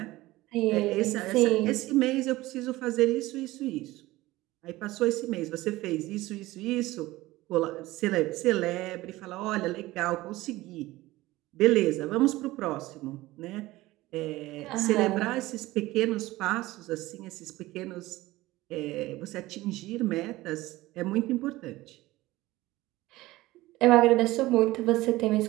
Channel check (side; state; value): left; quieter; 18.3 dB